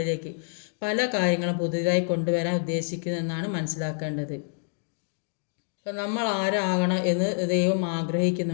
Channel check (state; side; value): silent; right; digital silence